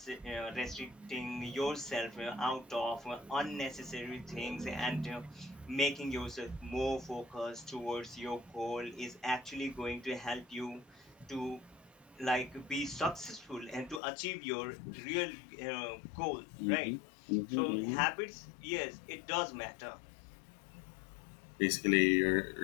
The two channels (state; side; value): drops out; right; at 14.0 s